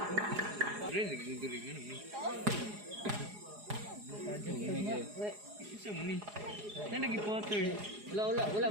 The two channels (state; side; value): late; left; 4.8 ms